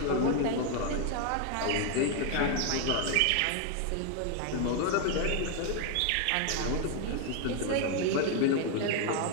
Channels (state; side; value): different; both; correlation 0.01